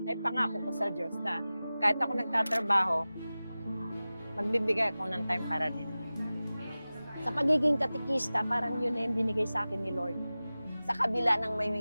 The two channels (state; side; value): inverted; both; correlation -0.97